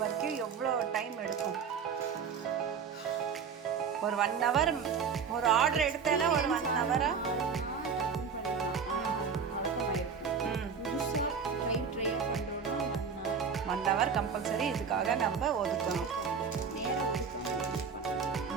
எவ்வளோ டைம் எடுக்கும்? ஒரு 1 hour. ஒரு ஆர்டர் எடுத்தேன்னா ஒரு 1 hour வழக்கமாயிருக்கும். புதுசாக ட்ரையாக பண்ணுறோன்னா 1 hour கம்பல்சரி இதுக்காக நம்ம ஒதுக்கணும். நேரம் ஒதுக்கணும்.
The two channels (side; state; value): left; quieter; 6.2 dB